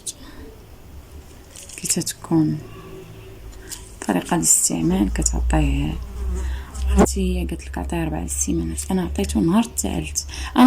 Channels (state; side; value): identical; both; correlation 1.00